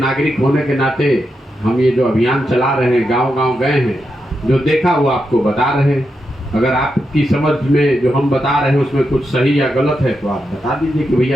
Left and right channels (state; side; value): normal; both; correlation 0.86